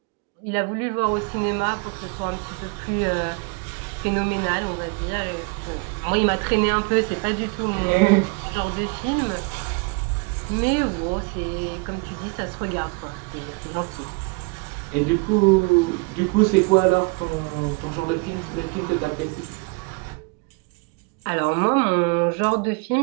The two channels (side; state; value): left; quieter; 31.2 dB